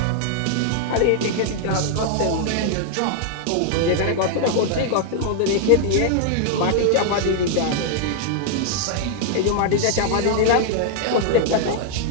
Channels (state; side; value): different; both; correlation 0.00